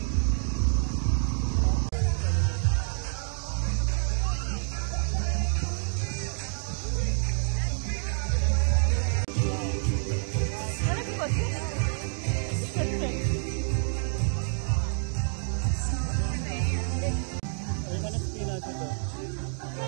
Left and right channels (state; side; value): silent; left; digital silence